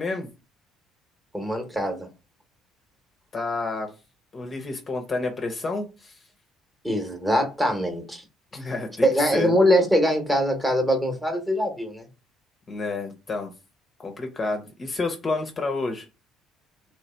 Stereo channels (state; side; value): normal; both; correlation 0.78